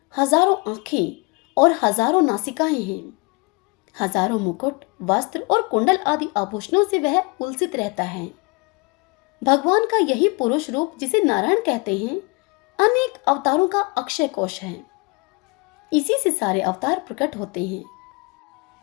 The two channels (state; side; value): quieter; right; 29.7 dB